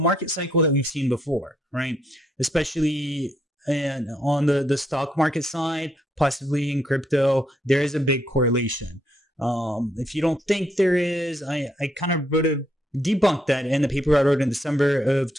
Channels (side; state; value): both; normal; correlation 0.75